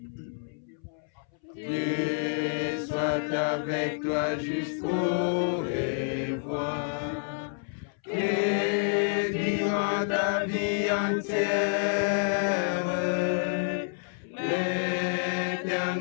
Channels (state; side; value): silent; right; 59 dB below the other